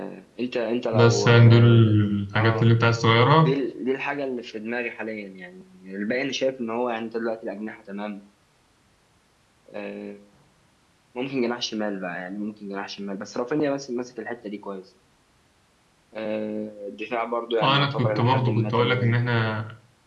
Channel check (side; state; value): both; identical; correlation 1.00